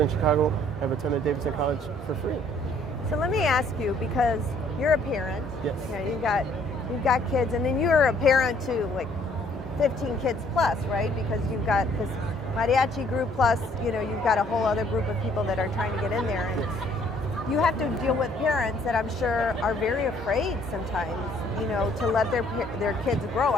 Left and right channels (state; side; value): normal; both; correlation 0.62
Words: Chicago, have attended Davidson College for free. So let me ask you, because you're a parent. Yes. You've got kids, and then you're a parent to like 15 kids plus, right? Because you've got this mariachi group plus, you've got a whole other group of people that are trying to get in there. And you have to deal with parents that I'm sure are very afraid sometimes, to let their kids grow.